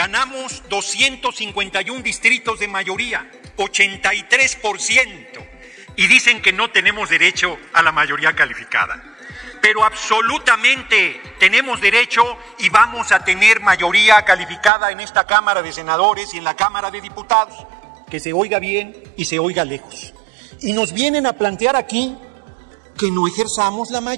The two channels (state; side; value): drops out; left; at 14.7 s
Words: 251 distritos de mayoría, 83%. Y dicen que no tenemos derecho a la mayoría calificada. Pero absolutamente tenemos derecho y vamos a tener mayoría calificada en esta Cámara de Senadores y en la Cámara de Diputados. Que se oiga bien y se oiga lejos. Y nos vienen a plantear aquí que no ejerzamos la